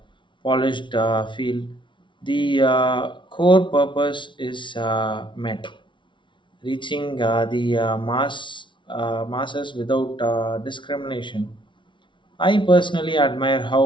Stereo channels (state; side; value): late; right; 0.24 ms